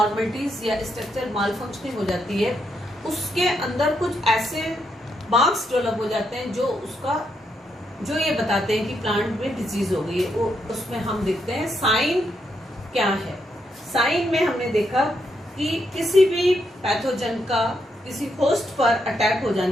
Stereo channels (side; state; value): both; normal; correlation 0.79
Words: या स्ट्रक्चर मालफंक्शनिंग हो जाती है, उसके अंदर कुछ ऐसे मार्क्स डेवलप हो जाते हैं जो ये बताते हैं कि प्लांट में डिजीज हो गई है। वो उसमें हम देखते हैं साइन क्या है। साइन में हमने देखा कि किसी भी पैथोजन का किसी होस्ट पर अटैक हो